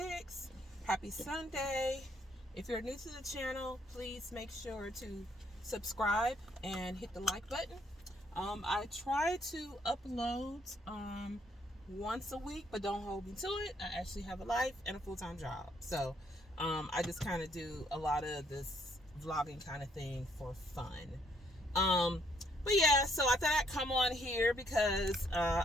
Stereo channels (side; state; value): both; normal; correlation 0.69